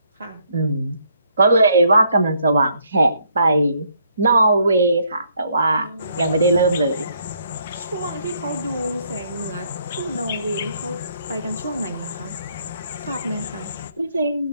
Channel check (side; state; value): both; inverted; correlation -0.70